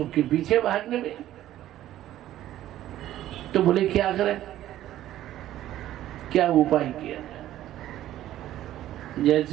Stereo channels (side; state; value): left; quieter; 13.2 dB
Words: के पीछे भागने में। तो बोले क्या करें? क्या उपाय किया?